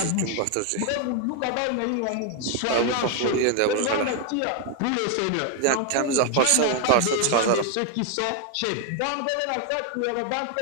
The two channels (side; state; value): both; different; correlation 0.00